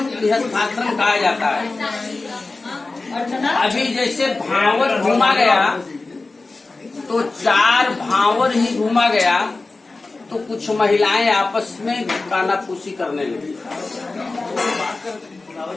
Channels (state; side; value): quieter; right; 3.5 dB